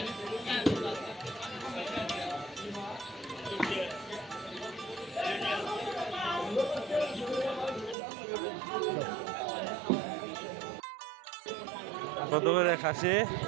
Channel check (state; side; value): drops out; left; at 8.0 s